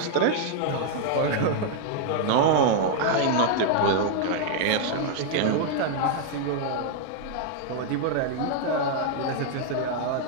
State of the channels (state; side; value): different; both; correlation -0.01